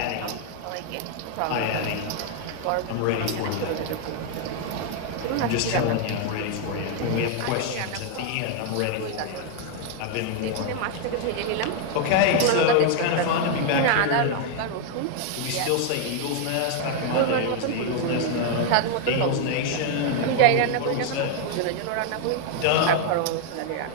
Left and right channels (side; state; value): both; different; correlation 0.00